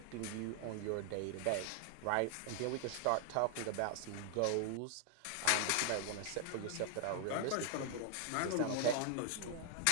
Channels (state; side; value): different; both; correlation 0.00